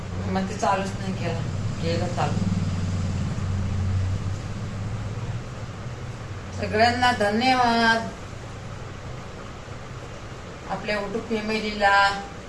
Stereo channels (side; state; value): both; identical; correlation 1.00